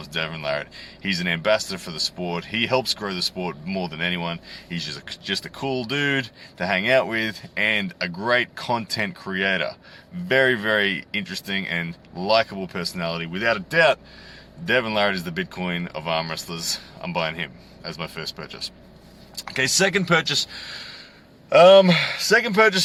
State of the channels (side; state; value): both; identical; correlation 1.00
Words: Devin Larratt. He's an ambassador for the sport. He helps grow the sport more than anyone. He's just a cool dude to hang out with and a great content creator. Very interesting and likable personality. Without a doubt, Devin Larratt is the Bitcoin of arm wrestlers. I'm buying him as my first purchase. Okay, second purchase, I'm going